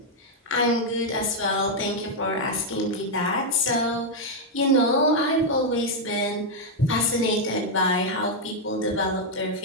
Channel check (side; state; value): both; normal; correlation 0.00